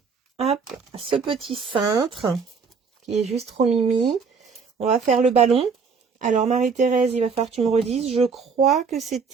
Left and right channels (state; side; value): quieter; left; 5.4 dB